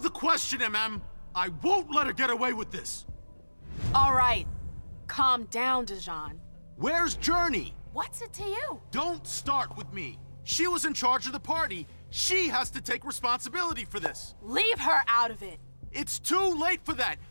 the question, MM. I won't let her get away with this. All right. Calm down, Dejan. Where's Journey? What's it to you? Don't start with me. She was in charge of the party. She has to take responsibility for this. Leave her out of it. It's too late for that.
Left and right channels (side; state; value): both; inverted; correlation -1.00